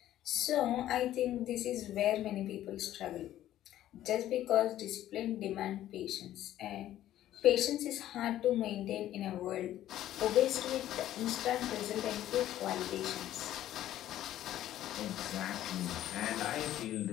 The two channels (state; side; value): quieter; right; 12.9 dB